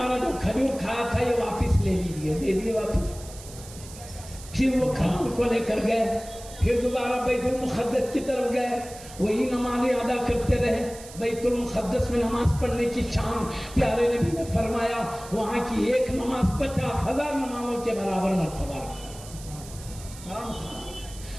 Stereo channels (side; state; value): right; noise; hiss, 16 dB below the sound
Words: جو کھجور کھایا تھا یہ واپس لے لیجیے، دے دیے واپس۔ پھر وہ کھجور کو لے کر گئے، پھر دوبارہ بیت المقدس کی طرف گئے، وہی نمازیں ادا کرتے رہے۔ بیت المقدس میں نماز پڑھنے کی شان پیارے نبی نے فرمایا وہاں کی ایک نماز 50,000 نمازوں کے برابر مرتبہ رکھتی۔